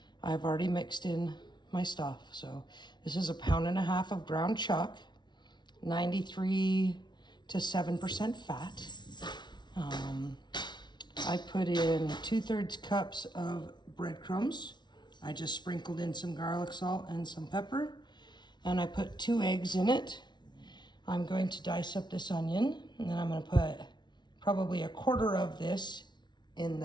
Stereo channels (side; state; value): right; late; 0.21 ms